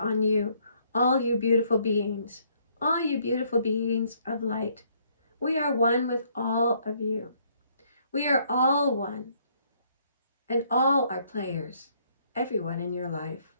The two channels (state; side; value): inverted; both; correlation -0.67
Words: you, all you beautiful beings of light. We are one with all of you. We are all one, and all are players, everyone in your life.